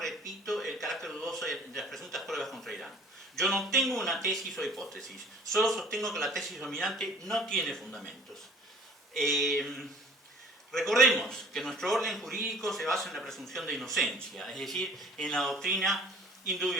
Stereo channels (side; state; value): both; normal; correlation 0.51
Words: el carácter dudoso de las presuntas pruebas contra Irán. Yo no tengo una tesis o hipótesis, solo sostengo que la tesis dominante no tiene fundamentos. Recordemos que nuestro orden jurídico se basa en la presunción de inocencia, es decir, en la doctrina in